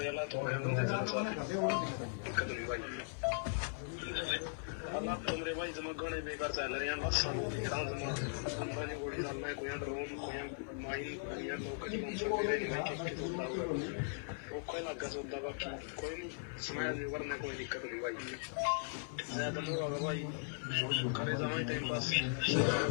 भाई जमा गणे बेकार चल रहे हैं बस अंबानी गोड़ी चल रहा है कोई ड्रोन कोई माई कोई नौकरी कोई लगा सोता बाकी कोई नहीं स्माइल नहीं करना कोई दिक्कत नहीं भाई ज्यादा लोग होगा भाई करे समय टाइम पास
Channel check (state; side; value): silent; right; 52 dB below the other